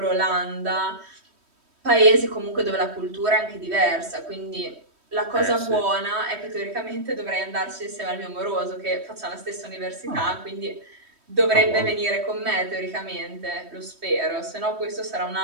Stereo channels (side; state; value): left; late; 3.1 ms